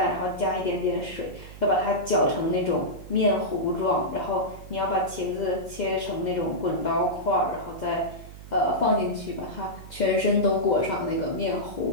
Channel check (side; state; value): right; noise; hum, 15 dB below the sound